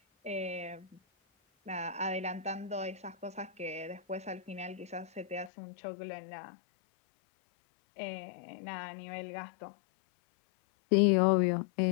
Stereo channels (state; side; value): drops out; right; at 5.5 s